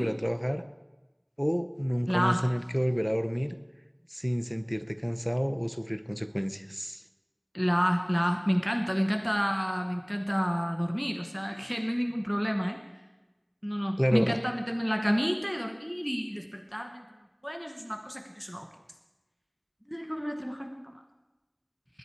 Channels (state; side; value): identical; both; correlation 1.00